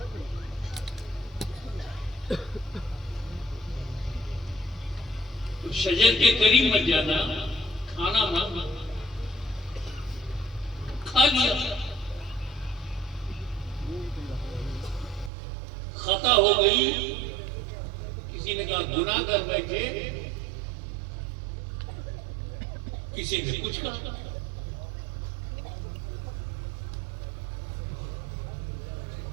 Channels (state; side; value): drops out; left; at 15.3 s